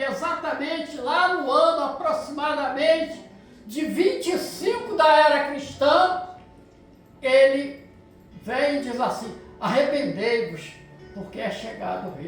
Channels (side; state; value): both; identical; correlation 1.00